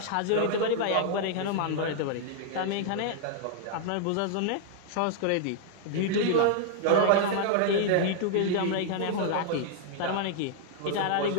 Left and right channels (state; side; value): different; both; correlation -0.01